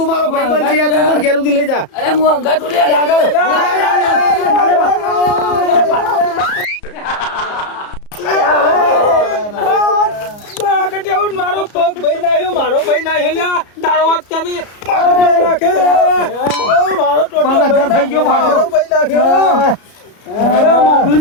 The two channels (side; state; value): right; late; 34 ms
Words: મારો ભાઈબંધ છે તું મને ઘેર સુધી લઈ જા અરે હું અંગા તું લે મારો પગ ભાઈ નાખ્યો મારો ભાઈ નાખ્યો લ્યા તારો વાત કરી મારો ભાઈ નાખ્યો મારો ટોટો પગ અધર થઈ ગયો, ભાગો. મારો ભાઈ નાખ્યો અરે